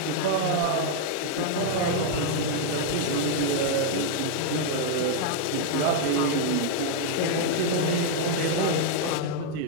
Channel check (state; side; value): different; both; correlation 0.00